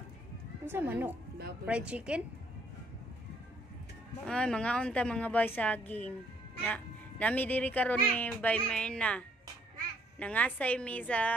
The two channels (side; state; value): both; normal; correlation 0.66